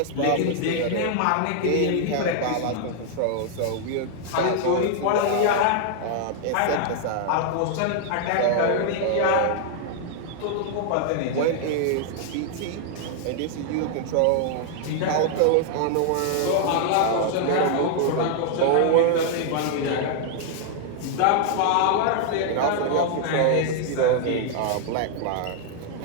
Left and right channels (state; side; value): different; both; correlation -0.01